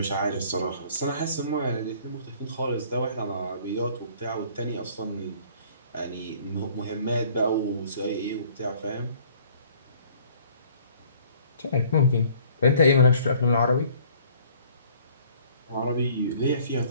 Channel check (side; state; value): both; inverted; correlation -0.56